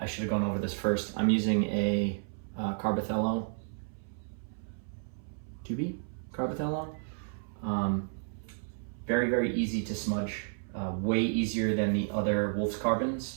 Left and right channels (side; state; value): left; silent; 56 dB below the other